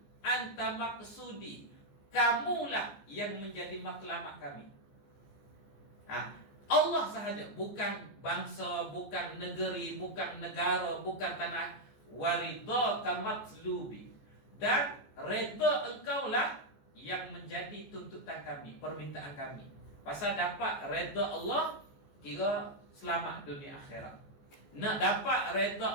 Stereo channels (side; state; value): right; late; 14 ms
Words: anta maqsudi, kamulah yang menjadi matlamat kami. Allah sahaja, bukan bangsa, bukan negeri, bukan negara, bukan tanah. Waridhaka matlubi, dan redha engkaulah yang menjadi tuntutan kami, permintaan kami. Pasal dapat redha Allah, kira selamat dunia akhirat. Nak dapat redha